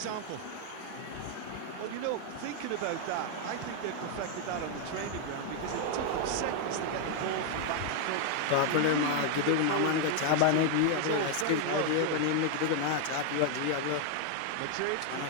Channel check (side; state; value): both; different; correlation 0.00